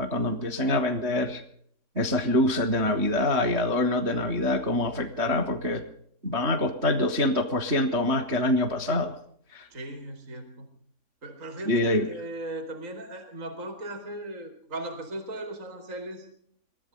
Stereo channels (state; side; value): late; left; 3.2 ms